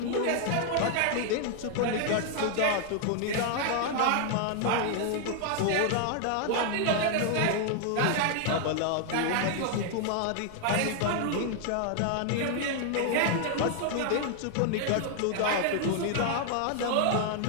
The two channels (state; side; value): different; both; correlation 0.00